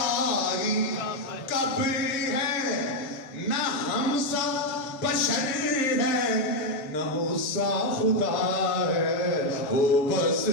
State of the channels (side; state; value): right; late; 7.8 ms